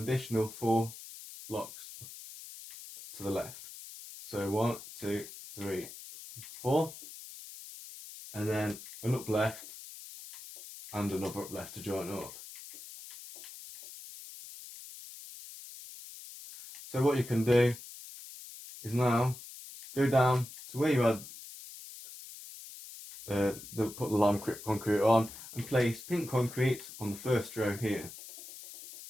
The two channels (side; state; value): left; noise; hiss, 14 dB below the sound